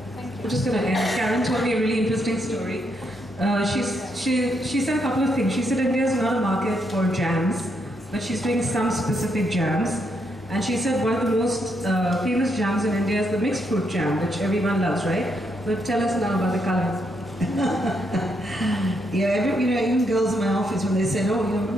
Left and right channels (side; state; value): both; normal; correlation 0.78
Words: I'm just going to end. Karen told me a really interesting story. She said a couple of things. She said India is not a market for jams, but she's doing some specific jams. And she said one of the most famous jams in India is the mixed fruit jam, which everyone loves, right? But tell us now about the color. Yeah, even girls in my office, when they said,